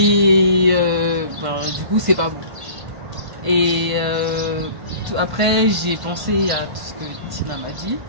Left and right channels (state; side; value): late; left; 1.5 ms